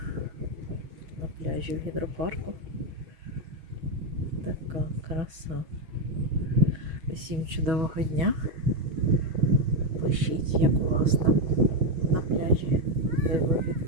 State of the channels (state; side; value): late; left; 6.2 ms